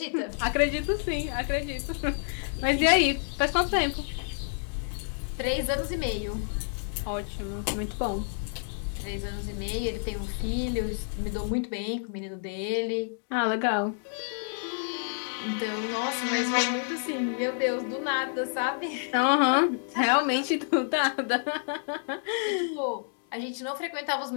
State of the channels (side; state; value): right; silent; digital silence